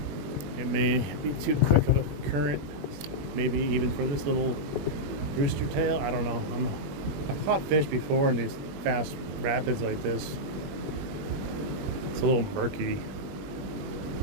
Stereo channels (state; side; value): late; left; 21 ms